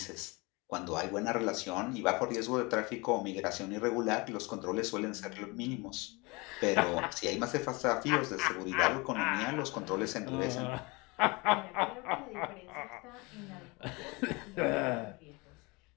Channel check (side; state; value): right; quieter; 26.2 dB